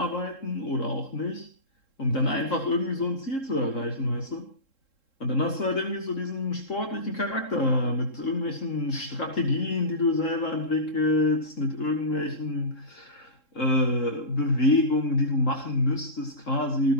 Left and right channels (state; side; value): late; right; 3.7 ms